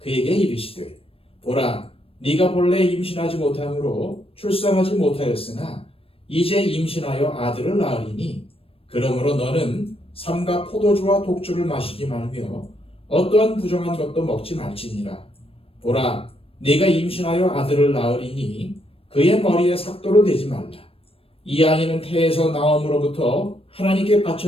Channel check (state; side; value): late; right; 0.28 ms